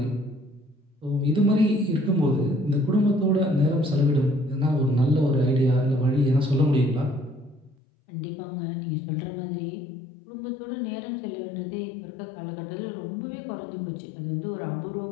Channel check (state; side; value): drops out; right; at 7.8 s